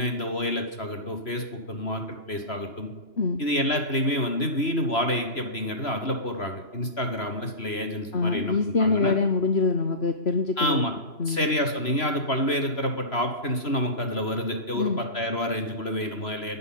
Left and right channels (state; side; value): late; right; 3.0 ms